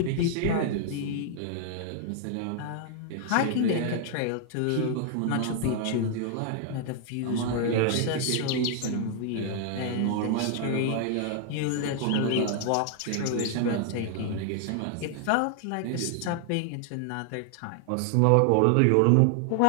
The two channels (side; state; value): both; different; correlation 0.00